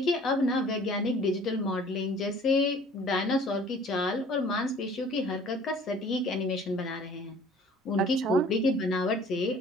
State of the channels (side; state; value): both; normal; correlation 0.51